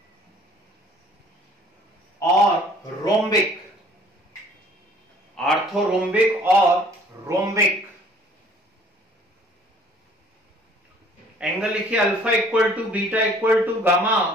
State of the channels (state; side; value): normal; both; correlation 0.55